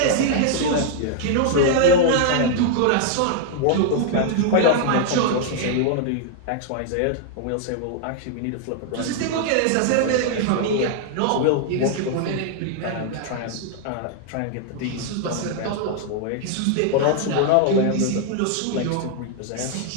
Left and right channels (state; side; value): different; both; correlation 0.00